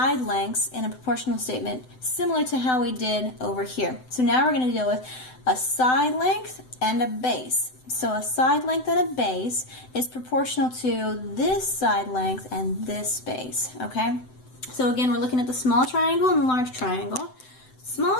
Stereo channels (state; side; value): late; right; 7.9 ms